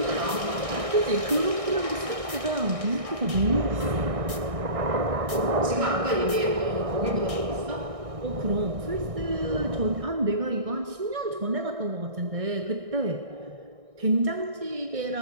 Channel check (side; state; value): left; late; 1.6 ms